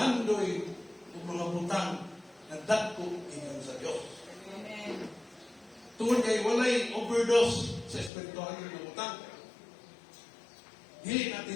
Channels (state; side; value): drops out; right; at 8.1 s